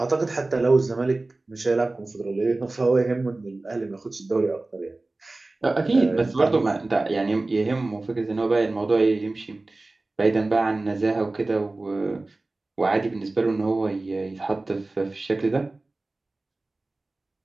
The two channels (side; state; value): left; quieter; 3.1 dB